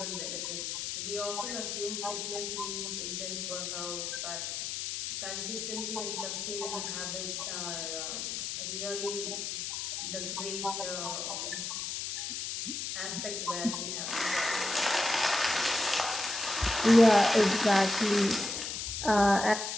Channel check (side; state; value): left; noise; hiss, 4 dB below the sound